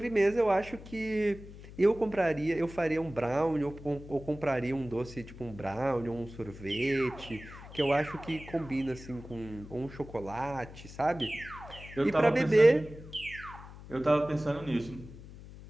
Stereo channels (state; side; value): noise; left; hum, 16 dB below the sound